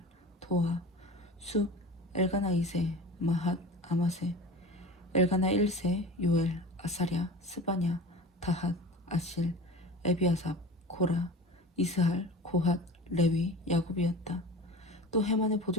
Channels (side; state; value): both; normal; correlation 0.35